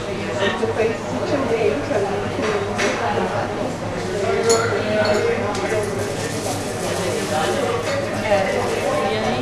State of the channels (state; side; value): identical; both; correlation 1.00